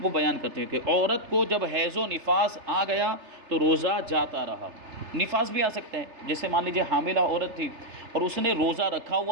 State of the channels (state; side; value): late; left; 3.3 ms